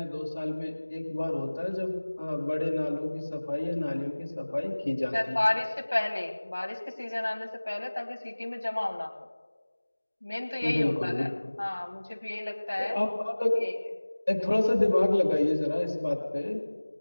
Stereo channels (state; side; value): inverted; both; correlation -1.00